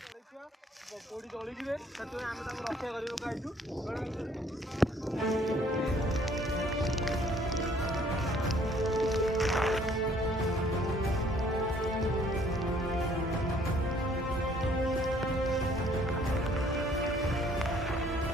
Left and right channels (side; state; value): both; normal; correlation 0.60